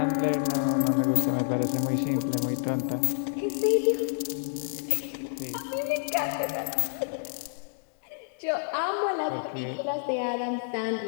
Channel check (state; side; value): silent; right; digital silence